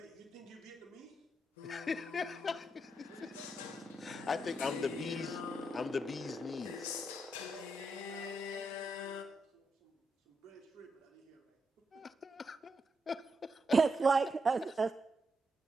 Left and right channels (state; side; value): normal; both; correlation 0.83